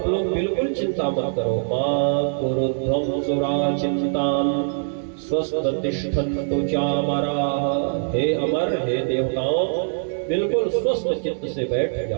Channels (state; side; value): silent; left; digital silence